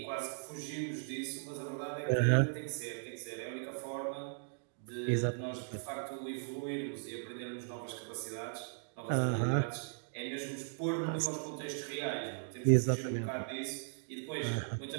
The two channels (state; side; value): silent; left; digital silence